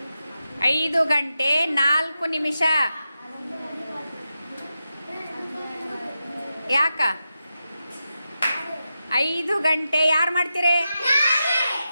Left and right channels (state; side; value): inverted; both; correlation -0.90